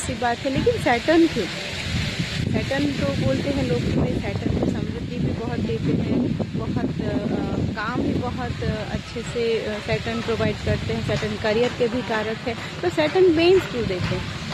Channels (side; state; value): both; identical; correlation 1.00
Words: सी बात है, लेकिन सैटर्न क्यों? सैटर्न तो बोलते हैं लोग कि सैटर्न को समृद्धि भी बहुत देते हैं, बहुत काम भी बहुत अच्छे से सैटर्न प्रोवाइड करते हैं, सैटर्न करियर के भी कारक है। तो सैटर्न पेन्स क्यों देते हैं?